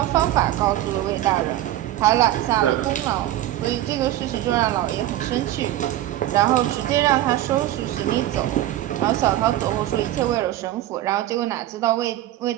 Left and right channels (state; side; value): quieter; left; 14.1 dB